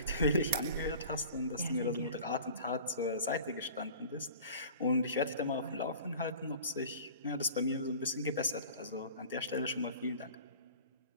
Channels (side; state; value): both; inverted; correlation -0.42